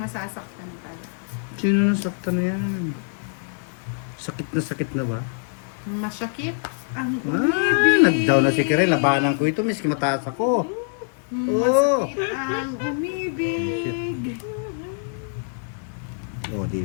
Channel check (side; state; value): right; silent; digital silence